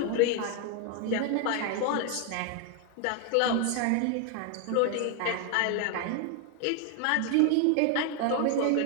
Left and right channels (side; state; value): both; different; correlation 0.01